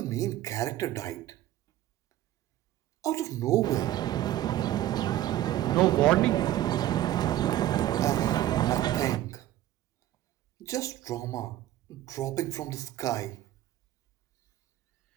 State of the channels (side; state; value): left; quieter; 13.8 dB